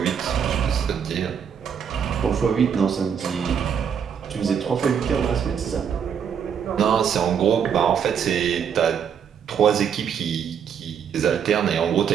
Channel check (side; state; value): left; quieter; 7.7 dB